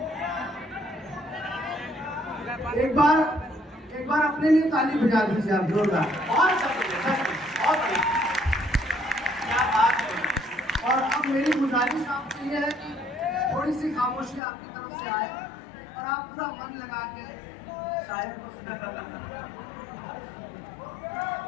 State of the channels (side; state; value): right; drops out; at 14.4 s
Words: एक बार अपने लिए ताली बजा दीजिए आप, जोरदार। बहुत अच्छा सुनिए, बहुत बढ़िया, क्या बात है। और अब मेरी गुजारिश आपसे ये है कि थोड़ी सी खामोशी आपकी तरफ से आए और आप पूरा मन लगा के शायर को सुना।